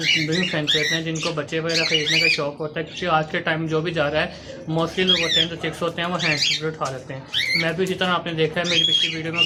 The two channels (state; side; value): identical; both; correlation 1.00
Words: विभिन्न फैंस रहते हैं जिनको बच्चे वगैरह खरीदने का शौक होता है, क्योंकि आज के टाइम जो भी जा रहा है मोस्टली लोग होते हैं जो चिक्स होते हैं वो हैंड क्रिकेट उठा लेते हैं। मैं भी इसी तरह आपने देखा है मेरी पिछली वीडियो में